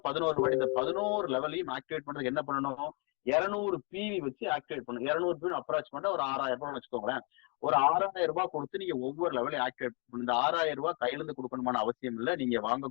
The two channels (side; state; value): right; quieter; 33.9 dB